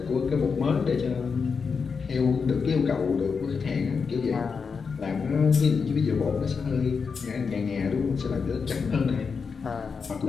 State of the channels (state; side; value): quieter; right; 5.5 dB